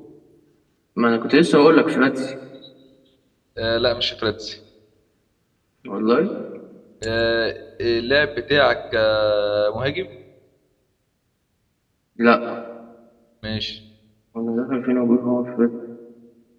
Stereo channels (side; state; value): both; identical; correlation 1.00